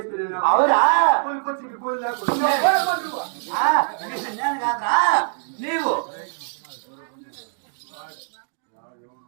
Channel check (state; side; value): silent; left; digital silence